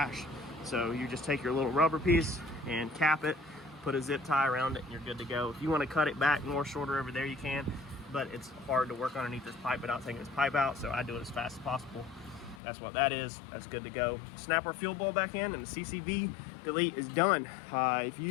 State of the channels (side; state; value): right; drops out; at 12.6 s